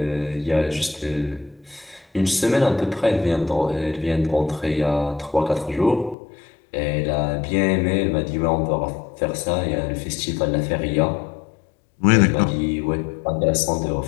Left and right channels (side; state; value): right; drops out; at 6.2 s